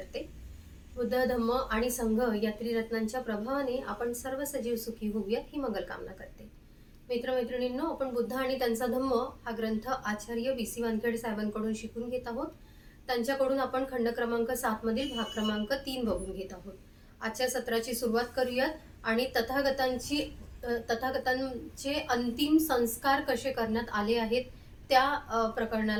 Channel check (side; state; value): both; identical; correlation 1.00